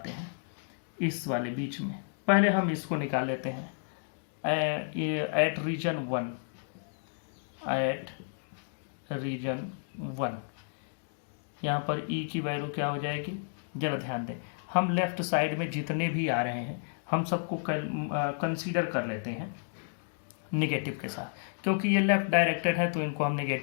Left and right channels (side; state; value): right; silent; digital silence